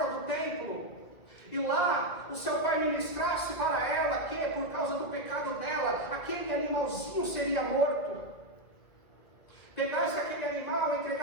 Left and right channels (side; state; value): right; late; 2.1 ms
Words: do templo, e lá o seu pai ministrasse para ela que, por causa do pecado dela, aquele animalzinho seria morto. Pegasse aquele animal e